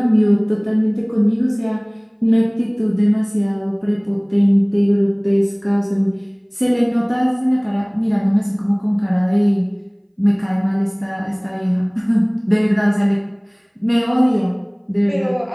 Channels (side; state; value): both; identical; correlation 1.00